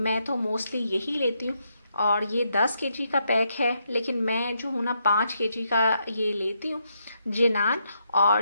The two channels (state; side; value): inverted; both; correlation -0.79